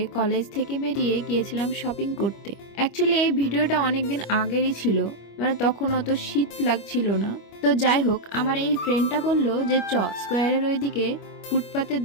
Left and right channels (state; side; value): late; right; 25 ms